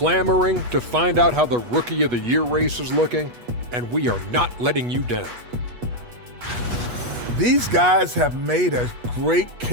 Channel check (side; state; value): left; late; 8.3 ms